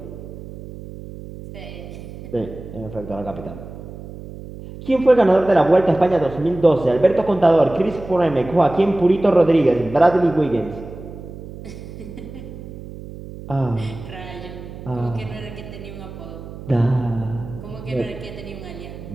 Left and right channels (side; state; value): right; noise; hum, 13 dB below the sound